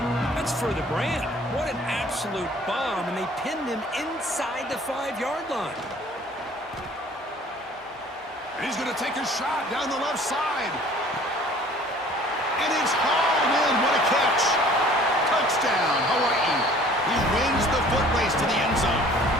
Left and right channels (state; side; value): normal; both; correlation 0.52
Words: That's for the brand. What an absolute bomb, and they pinned him inside the 5-yard line. And he's going to take a shot down the left side. And it's hauled in. What a catch. Touchdown, Hawaii. He wins the foot race to the end zone.